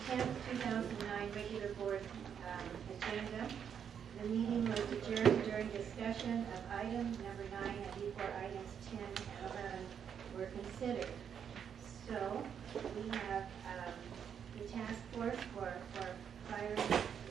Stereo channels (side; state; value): left; quieter; 7.9 dB